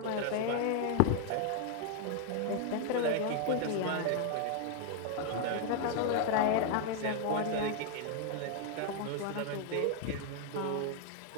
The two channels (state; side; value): different; both; correlation 0.00